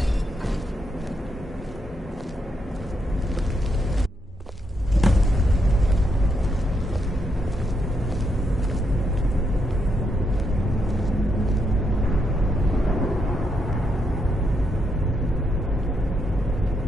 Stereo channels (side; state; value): both; normal; correlation 0.79